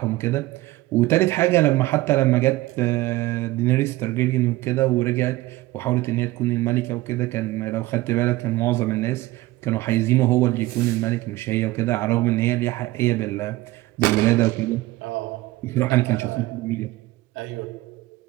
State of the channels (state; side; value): quieter; left; 18.3 dB